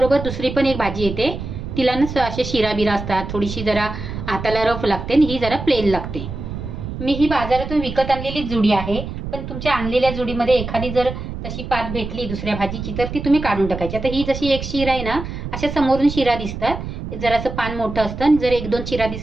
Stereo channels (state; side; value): noise; right; rumble, 7 dB below the sound